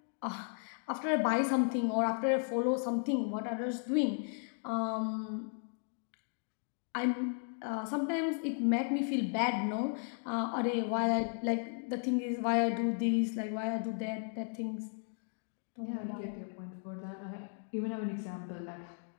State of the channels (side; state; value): right; silent; 54 dB below the other